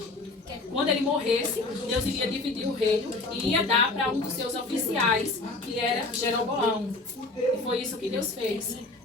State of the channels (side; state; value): right; quieter; 3.2 dB